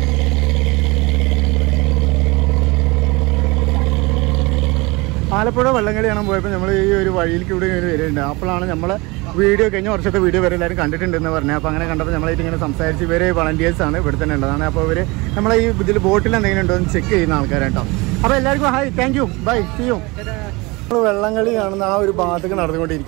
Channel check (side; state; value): left; quieter; 24.7 dB